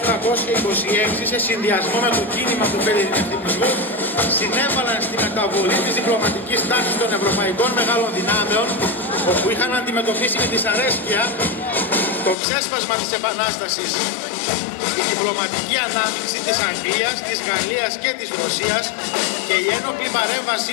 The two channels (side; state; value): right; drops out; at 12.4 s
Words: 1826 σε συνδυασμό με το κίνημα του φελινευτισμού συνέβαλαν στη μεταβολή της διπλωματικής τάξης των ευρωπαϊκών μεγάλων δυνάμεων, όπου είχαν αντιμετωπίσει με δυσαρέσκεια το ξέσπασμα της Επανάστασης. Η διπλωματική ανάμειξη της Αγγλίας, της Γαλλίας και της Ρωσίας και η ένοπλη